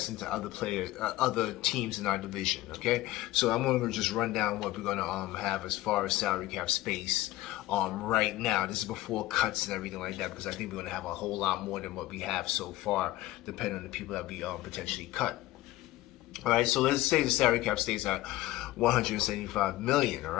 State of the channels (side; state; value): right; quieter; 16.7 dB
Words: to other teams in our division. Okay, so I'm gonna just run down what we're gonna have as far as salary cap space right now. This is before cuts and everything like that, because I think we're gonna have a whole lot more than what we have so far, depending on the people that we potentially cut. All right, so let's say the salary cap stays at $175 million. All